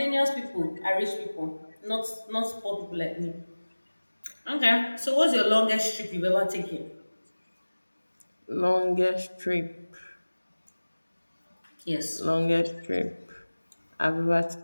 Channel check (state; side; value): inverted; both; correlation -1.00